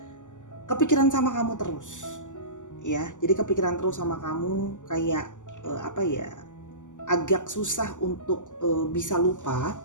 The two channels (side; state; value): right; late; 0.86 ms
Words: kepikiran sama kamu terus ya. Jadi kepikiran terus sama kamu, kayak agak susah untuk bisa lupa.